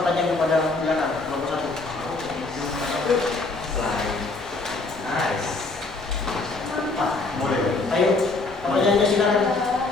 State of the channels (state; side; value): quieter; right; 3.5 dB